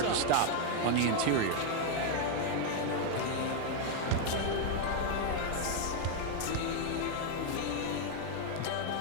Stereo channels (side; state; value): both; different; correlation 0.00